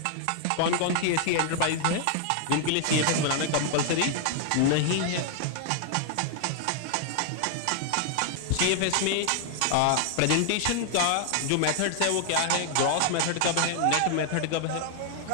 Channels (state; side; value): different; both; correlation 0.00